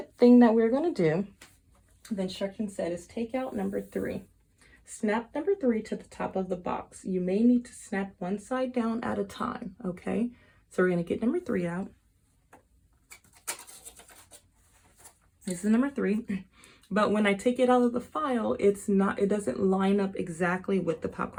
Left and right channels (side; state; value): both; identical; correlation 1.00